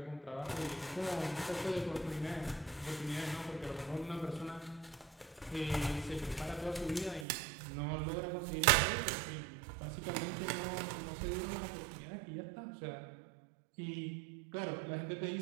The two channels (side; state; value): left; drops out; at 7.2 s